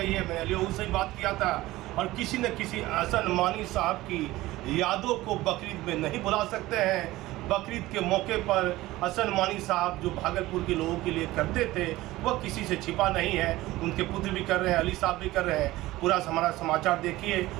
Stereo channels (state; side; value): quieter; left; 17.7 dB